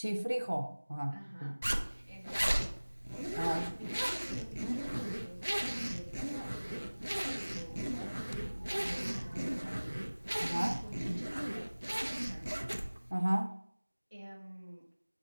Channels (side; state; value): both; inverted; correlation -1.00